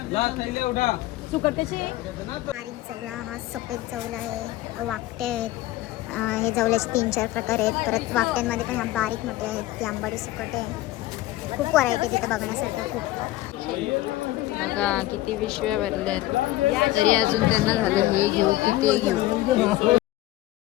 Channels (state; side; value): quieter; right; 16.3 dB